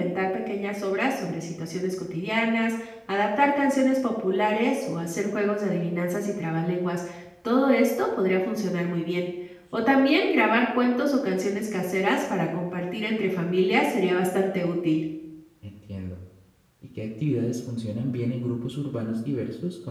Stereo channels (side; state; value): both; identical; correlation 1.00